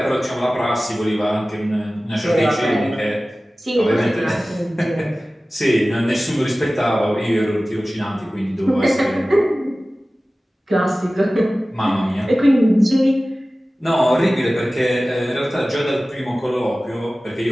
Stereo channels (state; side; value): normal; both; correlation 0.97